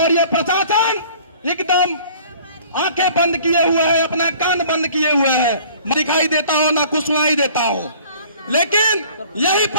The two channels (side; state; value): both; inverted; correlation -0.51